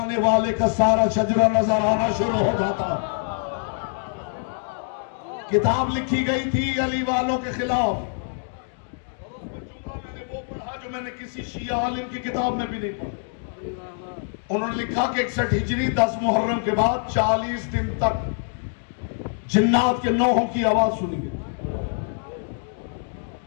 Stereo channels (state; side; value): silent; right; digital silence